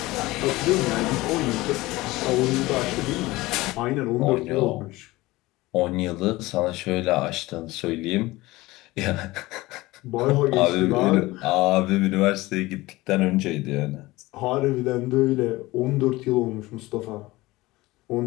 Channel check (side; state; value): right; quieter; 19.7 dB